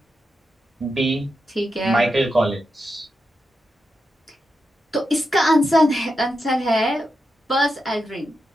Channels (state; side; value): normal; both; correlation 0.87